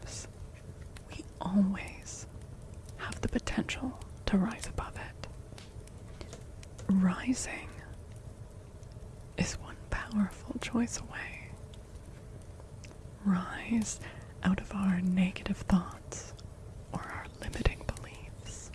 we always have the potential to rise above it. Rising is one powerful choice away. Rise out of our negative thoughts or our limiting beliefs.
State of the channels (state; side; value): identical; both; correlation 1.00